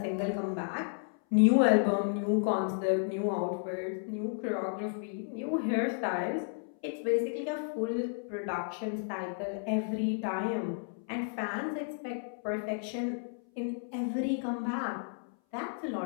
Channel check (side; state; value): right; silent; 56 dB below the other